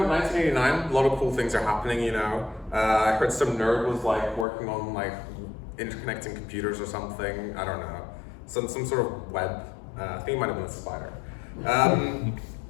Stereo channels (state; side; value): drops out; right; at 4.5 s